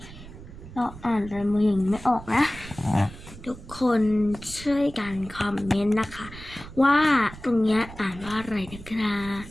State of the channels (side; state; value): right; noise; rumble, 15 dB below the sound